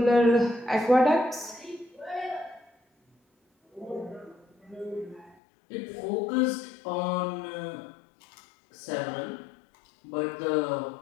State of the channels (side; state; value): right; drops out; at 5.4 s